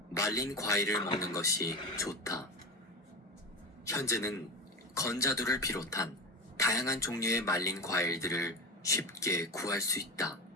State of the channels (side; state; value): both; normal; correlation 0.23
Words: 말린 과일을 먹는 것이 좋다. 현재는 건자두를 비롯한 다양한 종류의 말린 과일들을 쉽게 구할 수 있다.